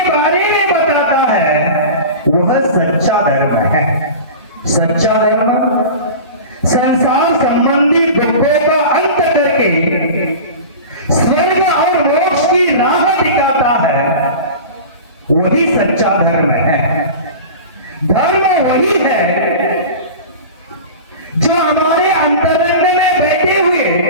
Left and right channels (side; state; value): both; inverted; correlation -0.33